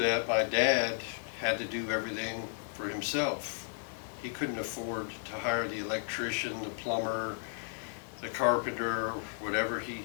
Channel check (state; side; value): silent; right; digital silence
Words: my dad had to do everything for himself. He couldn't afford to hire the electrician, the plumber, the carpenter, whatever.